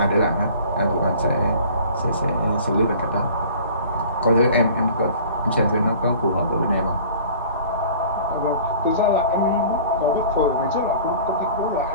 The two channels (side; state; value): both; inverted; correlation -0.46